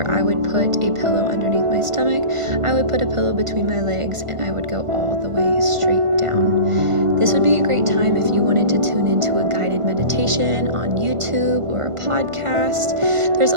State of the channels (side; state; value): left; late; 1.5 ms